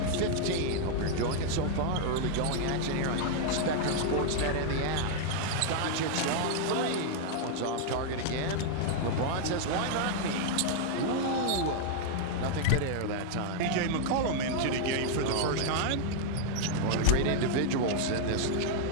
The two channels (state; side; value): different; both; correlation 0.00